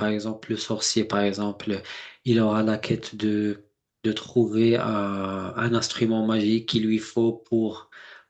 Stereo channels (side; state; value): both; identical; correlation 1.00